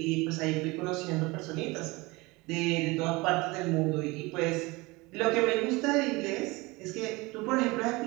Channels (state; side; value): quieter; left; 23.5 dB